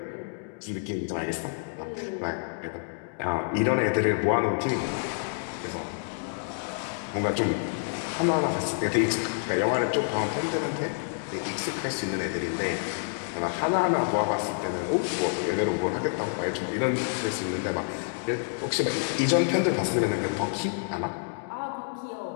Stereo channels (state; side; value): silent; right; digital silence